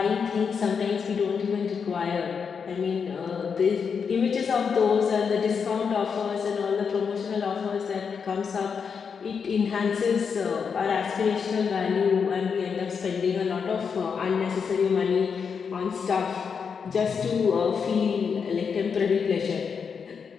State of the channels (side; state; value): right; quieter; 6.2 dB